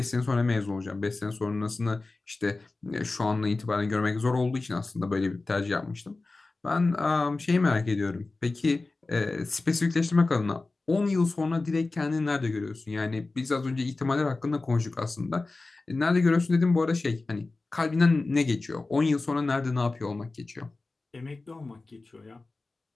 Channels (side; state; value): right; quieter; 3.4 dB